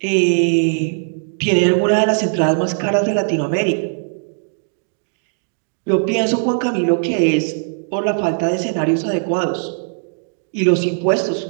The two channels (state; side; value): silent; left; digital silence